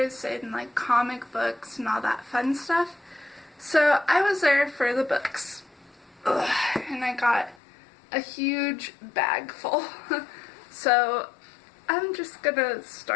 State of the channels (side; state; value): right; drops out; at 7.6 s